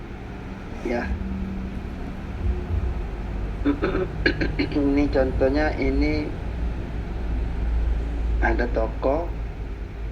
Ya. Ini contohnya, ini ada toko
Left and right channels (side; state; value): both; identical; correlation 1.00